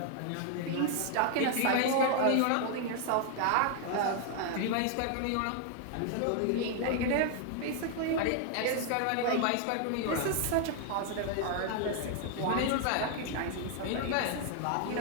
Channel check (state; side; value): different; both; correlation 0.00